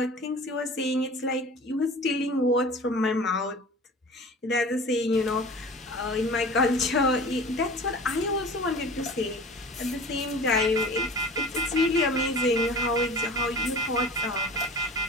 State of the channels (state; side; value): normal; both; correlation 0.40